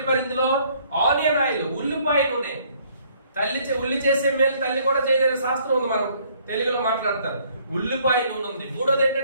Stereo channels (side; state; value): both; inverted; correlation -0.63